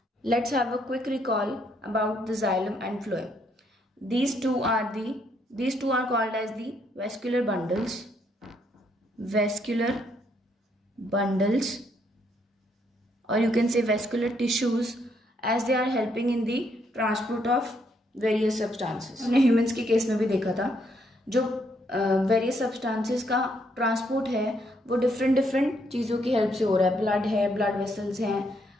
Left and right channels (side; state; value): both; normal; correlation 0.72